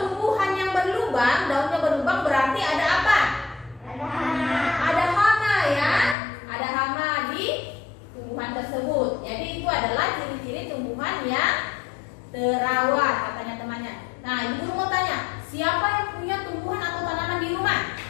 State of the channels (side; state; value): right; drops out; at 6.2 s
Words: tumbuhan yang berlubang, daunnya berlubang berarti ada apa? Ada hama ya, ada hama di tumbuhan tersebut. Jadi itu adalah ciri-ciri tumbuhan yang terawat, katanya temannya. Nah, Ibu Guru mau tanya, siapa yang punya tumbuhan atau tanaman di rumah?